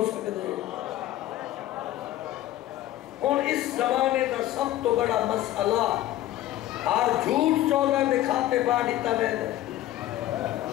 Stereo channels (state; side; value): quieter; right; 14.2 dB